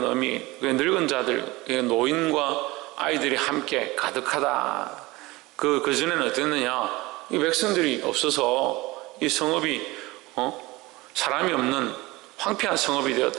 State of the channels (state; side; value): quieter; left; 21.3 dB